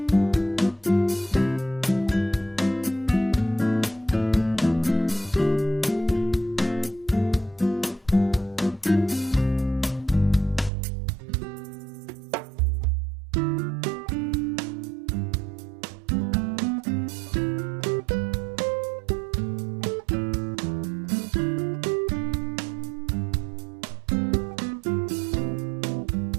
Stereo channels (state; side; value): drops out; left; at 10.7 s